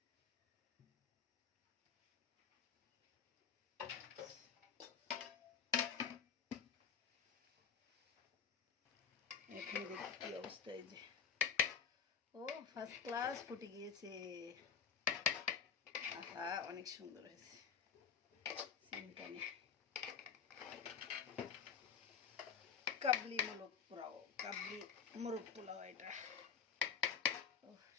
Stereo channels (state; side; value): quieter; right; 7.0 dB